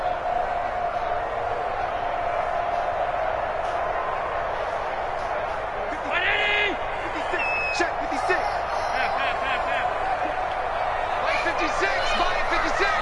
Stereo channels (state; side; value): identical; both; correlation 1.00